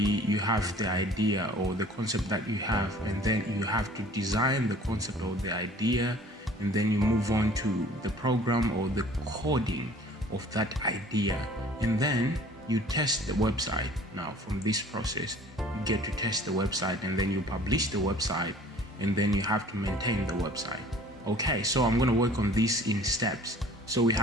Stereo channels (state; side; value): normal; both; correlation 0.50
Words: you have the idea or the concept that you have, and then you have to design the concept or the idea, and then you move on to the program or the coding of that idea, and then you test the website. Now from this process, you get to test the website, and then you publish the website, and then you have to maintain the website. Okay, so I'm going to work on this in steps. So we